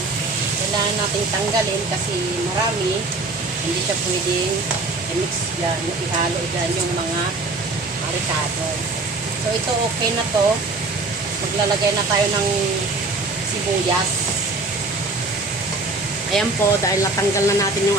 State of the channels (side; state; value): left; quieter; 3.3 dB